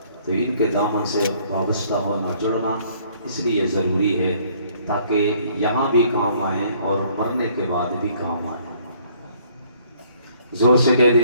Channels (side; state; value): both; inverted; correlation -0.62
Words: تو ان کے دامن سے وابستہ ہونا، جڑنا اس لیے ضروری ہے تاکہ یہاں بھی کام آئیں اور مرنے کے بعد بھی کام آئیں۔ زور سے کہہ